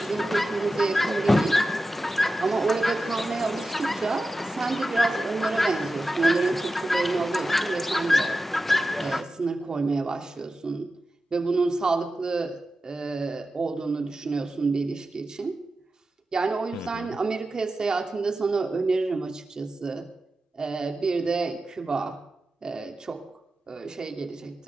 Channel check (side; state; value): both; normal; correlation 0.93